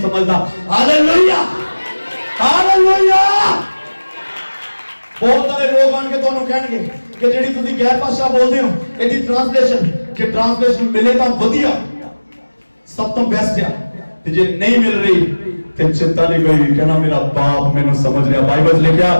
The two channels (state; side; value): inverted; both; correlation -1.00